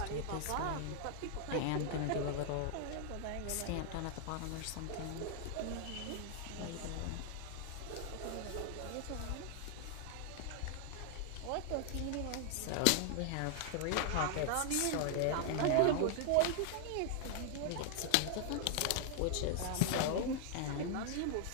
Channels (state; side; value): different; both; correlation 0.00